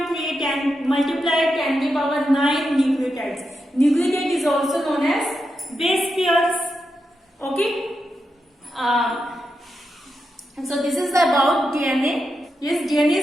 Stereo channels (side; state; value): both; normal; correlation 0.86